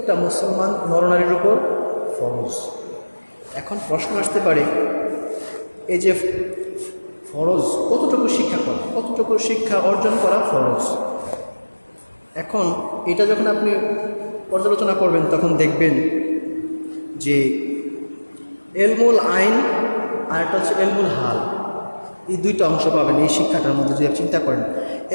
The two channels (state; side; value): inverted; both; correlation -1.00